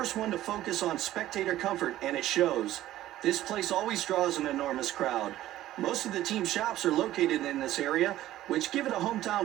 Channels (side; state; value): left; quieter; 14.2 dB